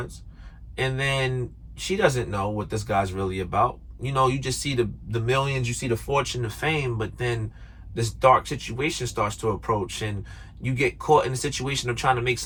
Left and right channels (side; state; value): both; identical; correlation 1.00